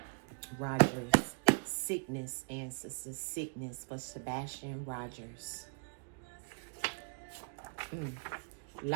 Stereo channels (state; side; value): quieter; left; 38.0 dB